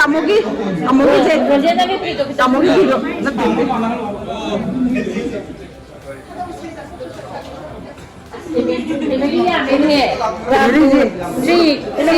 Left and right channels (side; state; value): both; identical; correlation 1.00